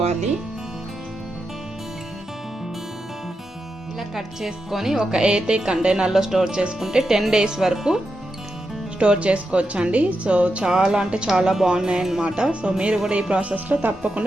ఇలా కట్ చేసుకొని ఒక ఎయిర్టైట్ కంటైనర్లో స్టోర్ చేసుకుంటే 10 డేస్ వరకు స్టోర్ చేసుకోవచ్చండి. సో చాలా అంటే చాలా బాగున్నాయి అన్నమాట. సో మీరు కూడా ఈ ప్రాసెస్లో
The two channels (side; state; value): both; normal; correlation 0.87